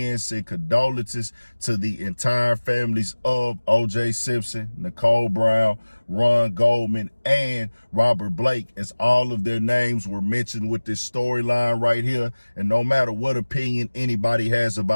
say condolences to the entire families of O.J. Simpson, Nicole Brown, Ron Goldman, and Robert Blake, as all of their names were mentioned with this storyline right here. And no matter what opinion anybody has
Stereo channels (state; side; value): inverted; both; correlation -1.00